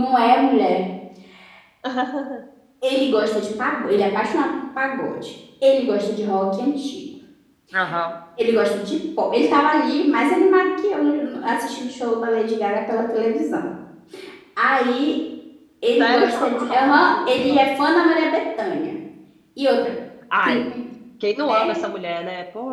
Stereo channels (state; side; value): identical; both; correlation 1.00